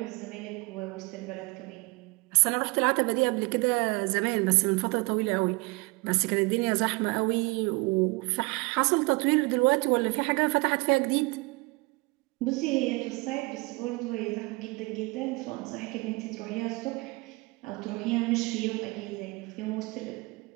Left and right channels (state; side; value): quieter; left; 26.0 dB